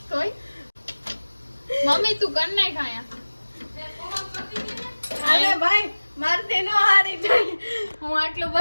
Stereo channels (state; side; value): inverted; both; correlation -1.00